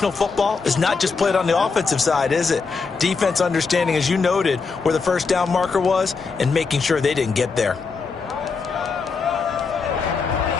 football is not just played on the offensive side, is it? Defense understanding, as you noted, where the first down marker was and making sure they didn't get there.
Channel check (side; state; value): right; quieter; 4.8 dB